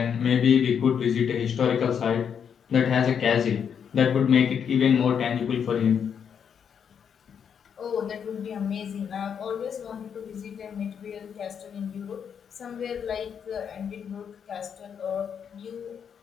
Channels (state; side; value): quieter; right; 7.6 dB